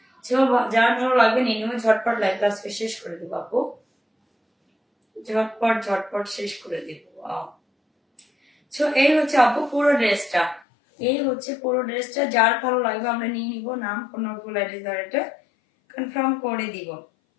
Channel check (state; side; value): drops out; right; at 10.7 s